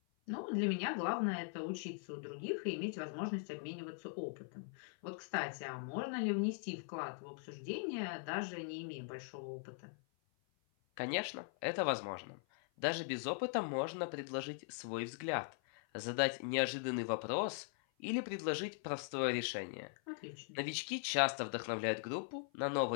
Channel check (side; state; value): right; silent; 51 dB below the other